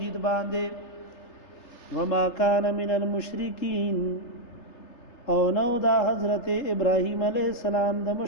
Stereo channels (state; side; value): late; right; 3.3 ms